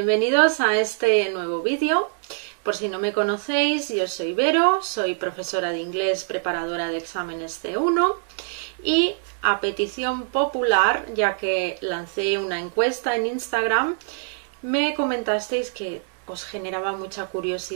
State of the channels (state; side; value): silent; left; 63 dB below the other